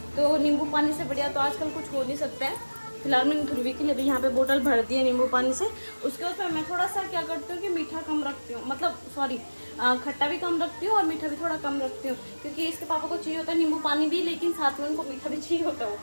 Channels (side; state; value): both; inverted; correlation -1.00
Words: तो नींबू पानी से बढ़िया तो आजकल कुछ हो नहीं सकता है। फिलहाल मैंने ध्रुवी के लिए भी यहाँ पे बोतल भर दी है नींबू पानी से। उसके ऊपर मैं थोड़ा सा क्या करती हूँ कि मीठा कम रखती हूँ, मतलब सॉरी खट्टा भी कम रखती हूँ और मीठा भी थोड़ा कम रखती हूँ, क्योंकि इसके पापा को चाहिए होता है नींबू पानी भी, लेकिन साथ में उनको मीठा भी चाहिए होता